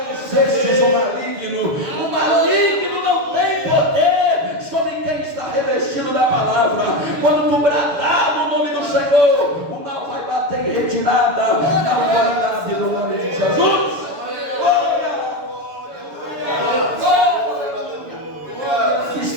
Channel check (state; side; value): late; left; 7.0 ms